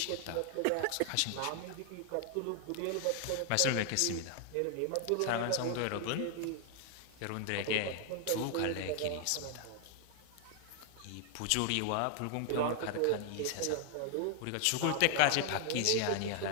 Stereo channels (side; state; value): both; different; correlation 0.00